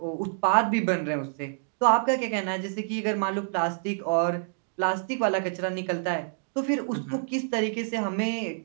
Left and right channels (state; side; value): silent; left; digital silence